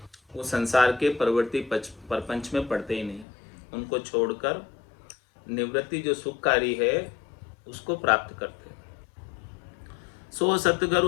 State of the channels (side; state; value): right; drops out; at 3.2 s